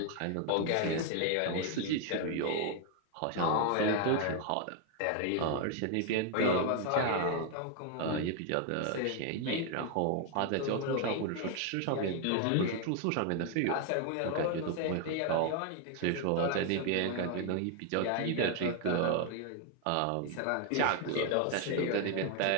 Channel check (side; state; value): both; different; correlation 0.01